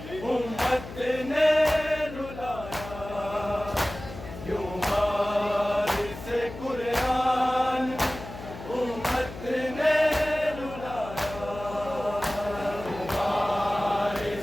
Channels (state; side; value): noise; left; hum, 12 dB below the sound